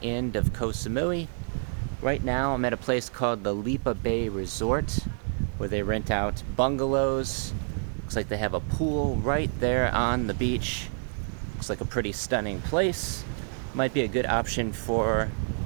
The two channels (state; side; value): silent; left; 59 dB below the other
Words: end of Koh Samui. Right now, I'm at a place called the Lipa Bay Resort, where they rent out bungalows. Looks like they have a pool right there on the beach. Looks like a pretty stunning place. Might be a good option for